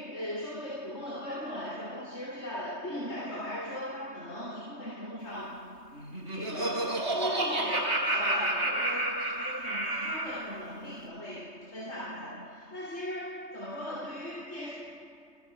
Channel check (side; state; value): right; late; 3.2 ms